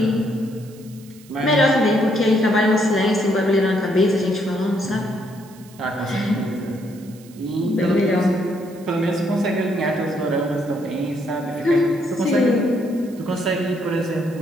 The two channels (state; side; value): noise; right; hiss, 25 dB below the sound